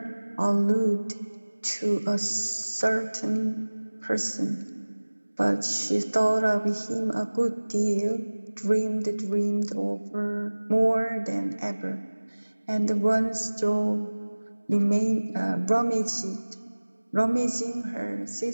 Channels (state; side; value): inverted; both; correlation -1.00